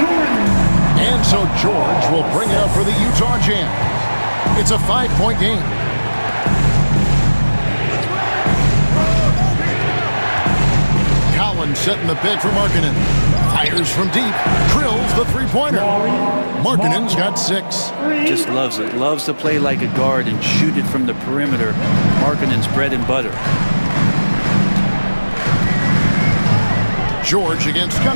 And so George will bring it up for the Utah Jazz. It's a 5-point game. Collins setting the pick for Markkanen. Fires from deep. Drills the three-pointer. Markkanen's got 6. Just loves it. Loves to play like a guard and shoot it from the perimeter. Markkanen's bread and butter. George against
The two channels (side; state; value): both; inverted; correlation -1.00